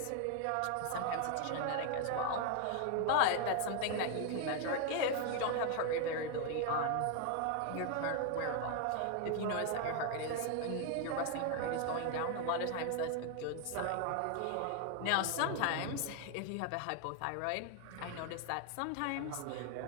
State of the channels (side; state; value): both; different; correlation 0.00